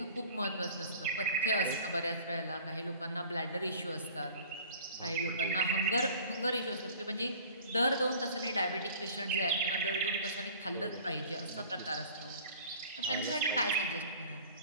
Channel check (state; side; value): inverted; both; correlation -0.47